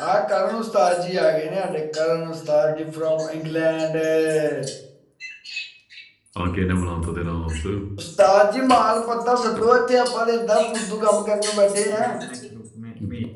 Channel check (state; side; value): identical; both; correlation 1.00